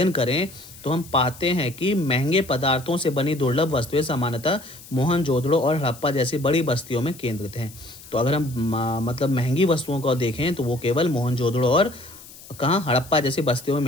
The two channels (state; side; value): noise; left; hiss, 19 dB below the sound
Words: करें, तो हम पाते हैं कि महंगे पदार्थों से बनी दुर्लभ वस्तुएं सामान्यतः मोहनजोदड़ो और हड़प्पा जैसी बड़ी बस्तियों में केंद्रित हैं। तो अगर हम मतलब महंगी वस्तुओं को देखें तो वो केवल मोहनजोदड़ो और कहाँ, हड़प्पा जैसी बस्तियों में